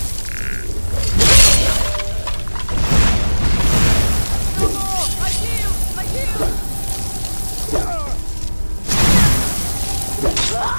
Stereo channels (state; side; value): inverted; both; correlation -1.00